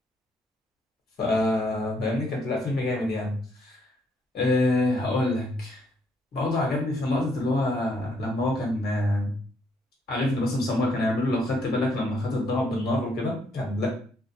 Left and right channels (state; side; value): normal; both; correlation 0.71